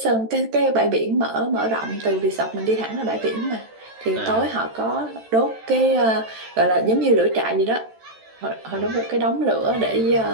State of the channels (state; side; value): late; left; 13 ms